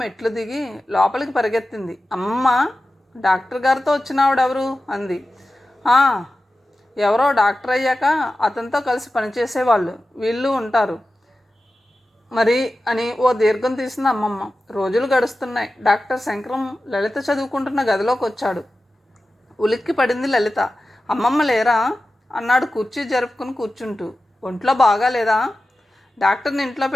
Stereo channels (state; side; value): normal; both; correlation 0.94